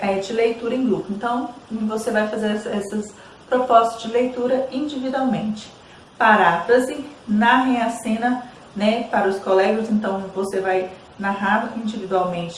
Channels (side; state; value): both; identical; correlation 1.00